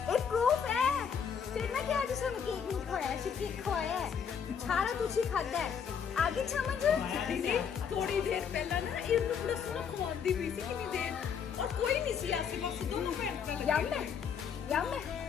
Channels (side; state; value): right; quieter; 7.2 dB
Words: फिर ना कि आज उसने केक नहीं खाया, केक खवाया है सारा कुछ ही खाता है। आगे समझ थोड़ी देर पहला ना इनको पूरा सोना खवांदी हुई थी कितनी देर, और कोई नहीं सी आसे पास दोनों पैर पे यम